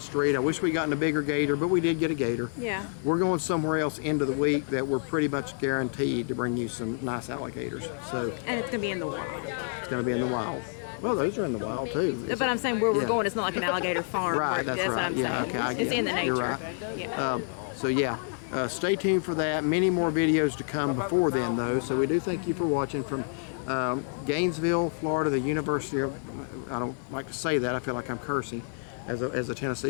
street. I wish we gotten a bigger gator, but we did get a gator. Yeah. We're going somewhere else into the week that we're pretty much guaranteed to bring you some nice alligators. So And it's gonna be in the wild. it's going to be in the wild. Well, those are in the wild too. But I'm saying where we're Yeah. going, it's not like an alligator farm. Right, that's what right. I'm Yeah, saying. okay, I It's get in the it. nature. You're right. Yeah. So yeah, stay tuned for that. Many more videos to come before then, though. So we do thank you for watching from Gainesville, Florida, the University of. I don't like to say that. I feel like I'm cursing as a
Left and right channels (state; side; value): silent; right; 59 dB below the other